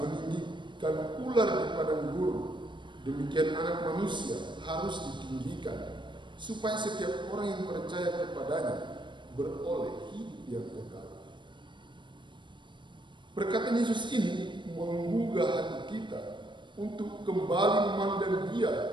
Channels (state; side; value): late; left; 0.23 ms